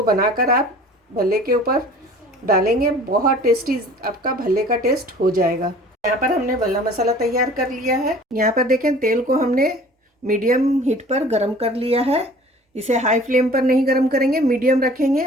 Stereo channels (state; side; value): normal; both; correlation 0.47